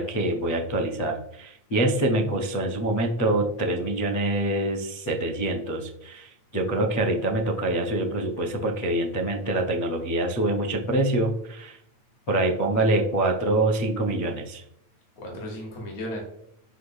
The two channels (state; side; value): late; right; 8.4 ms